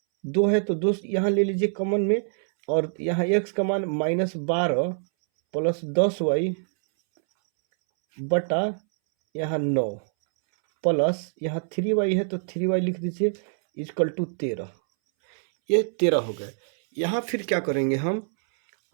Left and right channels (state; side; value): silent; left; 62 dB below the other